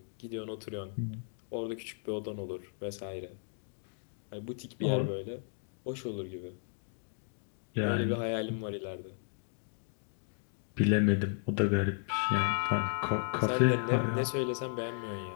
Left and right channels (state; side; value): silent; right; digital silence